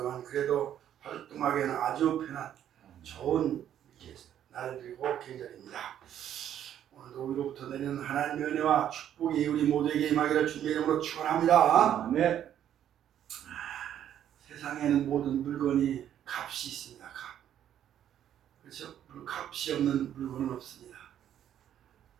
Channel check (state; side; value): quieter; left; 10.5 dB